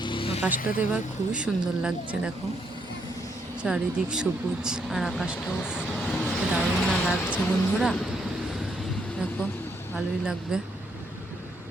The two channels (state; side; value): normal; both; correlation 0.75